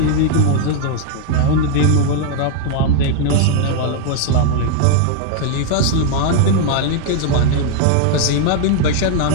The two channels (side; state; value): both; different; correlation 0.00